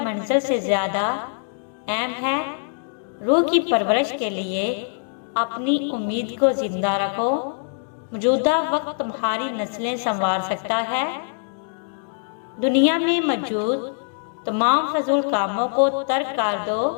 منزل سے زیادہ اہم ہے۔ روح کی پرورش کے لیے اپنی امید کو زندہ رکھو۔ موجودہ وقت تمہاری نسلیں سنوار سکتا ہے۔ دنیا میں موجود تمام فضول کاموں کو ترک کر دو،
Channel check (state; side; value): silent; right; digital silence